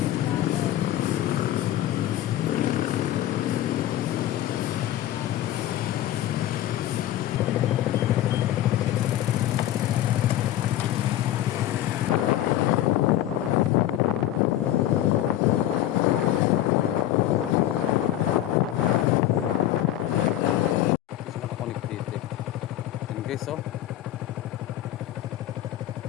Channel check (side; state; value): right; quieter; 13.0 dB